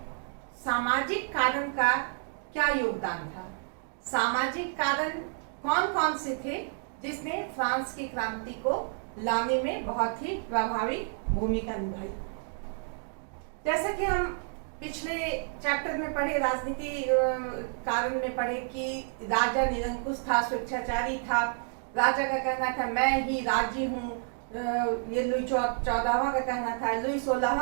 सामाजिक कारण का क्या योगदान था, सामाजिक कारण कौन कौन से थे जिसने फ्रांस की क्रांति को लाने में बहुत ही प्रभावी भूमिका निभाई। जैसा कि हम पिछले चैप्टर में पढ़े, राजनीति कारण में पढ़े कि राजा निरंकुश था, स्वेच्छाचारी था। राजा का कहना था मैं ही राज्य हूँ, ये लुई 14वां का कहना था, लुई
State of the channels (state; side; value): silent; left; 56 dB below the other